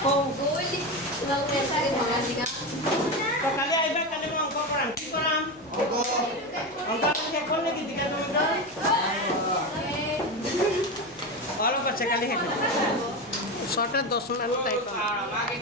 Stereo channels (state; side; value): noise; left; hum, 29 dB below the sound